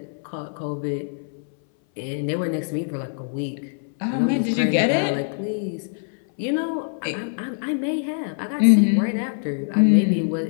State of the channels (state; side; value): silent; right; 59 dB below the other